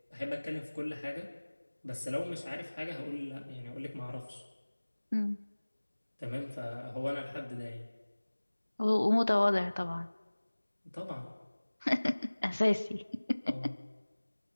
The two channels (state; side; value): inverted; both; correlation -1.00